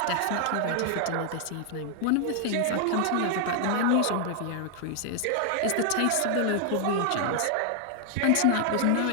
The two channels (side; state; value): both; different; correlation 0.00